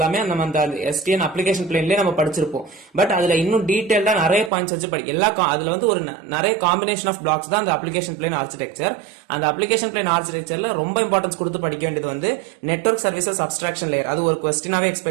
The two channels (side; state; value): left; drops out; at 4.5 s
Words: நம்ம அந்த எஸ்டிஎன் அப்ளிகேஷன் பிளேன்லயே நம்ம படிச்சிருப்போம். பட் அதுல இன்னும் டீடைல்டா நிறைய பாயிண்ட்ஸ் வச்சு அதுல வந்து ஒரு நிறைய காம்பினேஷன் ஆஃப் பிளாக்ஸ் தான் அந்த அப்ளிகேஷன் பிளேன் ஆர்கிடெக்சர். அந்த அப்ளிகேஷன் பிளேன் ஆர்கிடெக்சர்ல ரொம்ப இம்பார்ட்டன்ஸ் கொடுத்து படிக்க வேண்டியது வந்து நெட்வொர்க் சர்வீசஸ் அப்ஸ்ட்ராக்ஷன் லேயர், அது ஒரு கொஸ்டினாவே